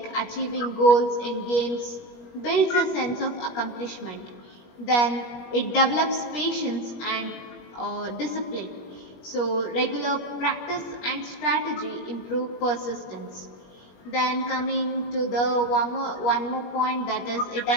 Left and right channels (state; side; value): late; right; 21 ms